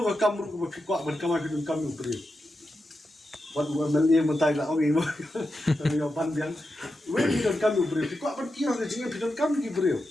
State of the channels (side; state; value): both; normal; correlation 0.89